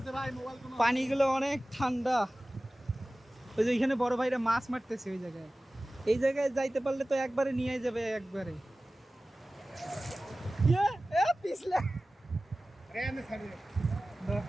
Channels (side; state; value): both; normal; correlation 0.97